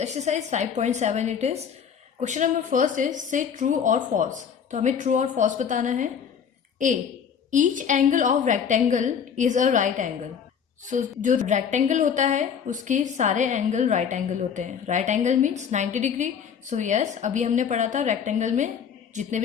exercise 5.7 it is question number first is से ट्रू और फॉल्स. तो हमें ट्रू और फॉल्स बताना है. A, each angle of rectangle is a right angle. So जो रेक्टेंगल होता है उसके सारे एंगल राइट एंगल होते हैं. Right angle means 90 degree. So yes, अभी हमने पढ़ा था रेक्टेंगल में जितने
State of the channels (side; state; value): right; quieter; 7.4 dB